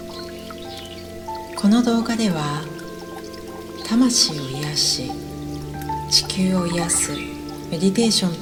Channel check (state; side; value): identical; both; correlation 1.00